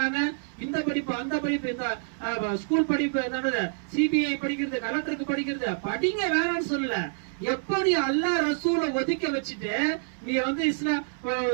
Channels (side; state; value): left; silent; 60 dB below the other